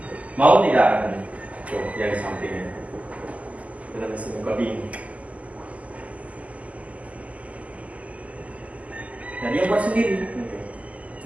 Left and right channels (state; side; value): late; left; 0.070 ms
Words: Mau tidak katanya? Tuh, yang di sampingnya. Itu mesin coding. Nah, dia buat sendiri.